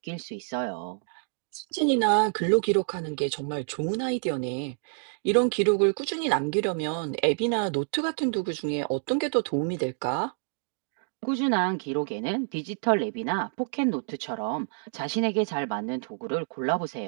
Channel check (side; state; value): left; silent; 59 dB below the other